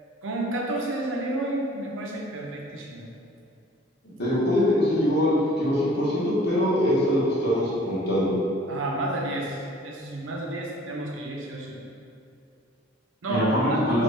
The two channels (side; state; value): both; normal; correlation 0.51